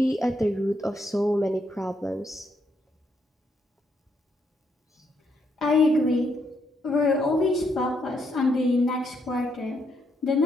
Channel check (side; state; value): both; normal; correlation 0.77